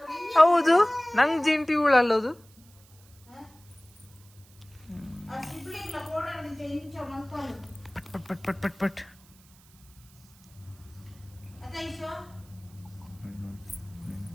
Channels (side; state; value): right; noise; hiss, 27 dB below the sound